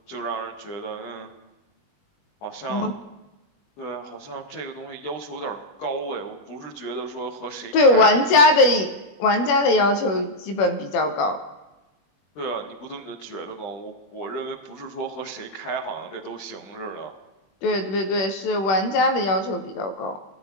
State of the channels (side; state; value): right; late; 21 ms